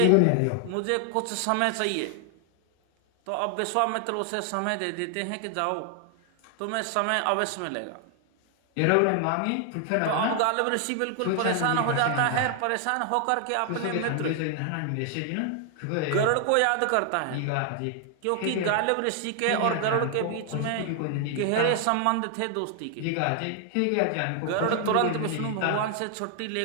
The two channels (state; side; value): different; both; correlation 0.00